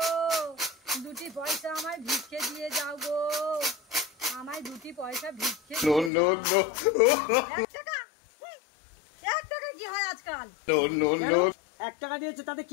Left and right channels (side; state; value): right; drops out; at 6.1 s